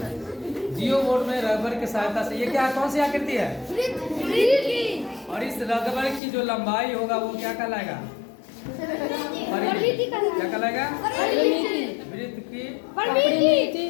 जियो बोर्ड में रबर की सहायता से, ये क्या कौन सी आकृति है? और इस रबर की जो लंबाई होगा वो क्या कहलाएगा? परिमिति। क्या कहलाएगा? परिमिति, वृत्त की परिमिति,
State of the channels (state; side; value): drops out; right; at 6.2 s